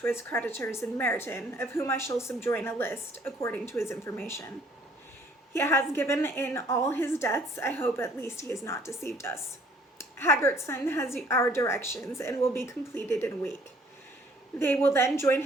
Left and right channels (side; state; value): both; normal; correlation 0.59